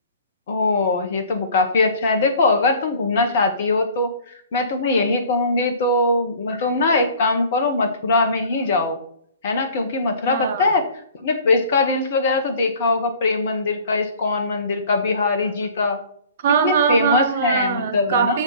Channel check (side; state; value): both; inverted; correlation -0.49